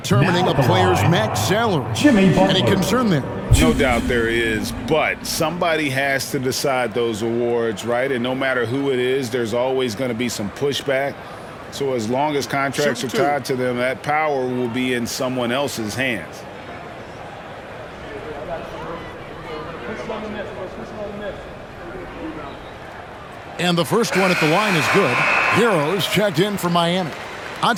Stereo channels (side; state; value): both; identical; correlation 1.00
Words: a player's max salary. Any concern there? No doubt there is, but somebody has to decide those awards, right? And no matter who it is, there's always going to be some pushback. So as long as contracts are tied to them, that power will be in someone else's hands. And the first one at the line is good. Heroes checked in for Miami.